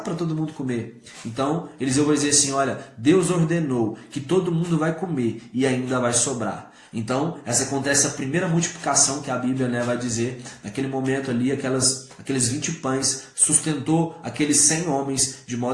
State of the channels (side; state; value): both; identical; correlation 1.00